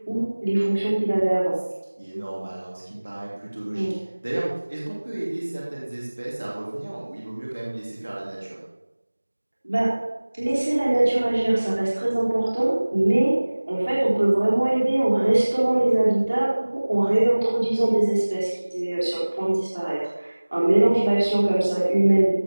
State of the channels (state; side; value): inverted; both; correlation -1.00